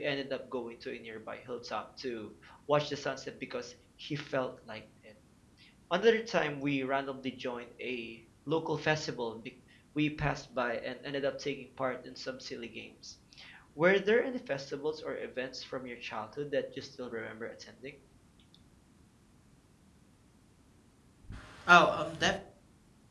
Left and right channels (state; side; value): identical; both; correlation 1.00